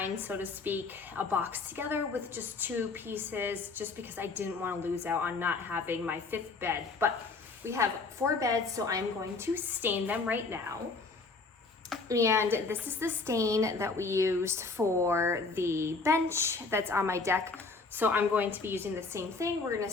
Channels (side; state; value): right; quieter; 4.1 dB